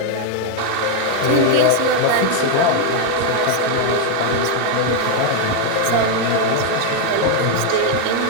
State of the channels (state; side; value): different; both; correlation 0.00